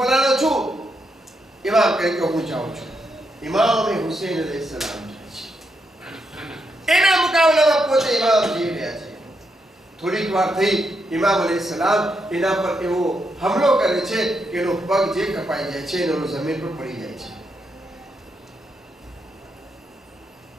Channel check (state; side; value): normal; both; correlation 0.81